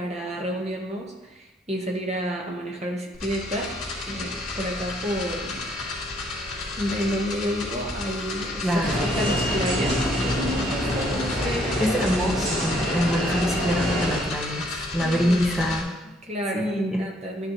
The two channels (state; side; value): normal; both; correlation 0.66